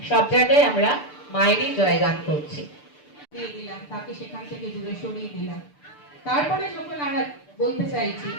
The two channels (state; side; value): late; right; 6.8 ms